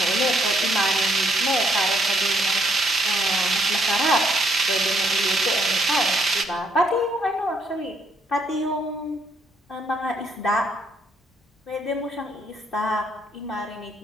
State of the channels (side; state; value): both; normal; correlation 0.70